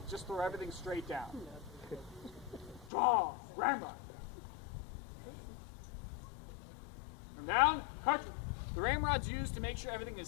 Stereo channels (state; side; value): drops out; right; at 2.9 s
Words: just throw everything straight down. Draw, ramrod. From down, cartridge. The ramrod's used to make sure everything is